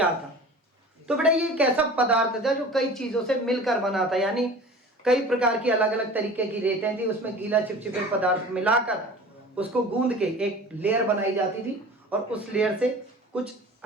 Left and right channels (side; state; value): both; normal; correlation 0.41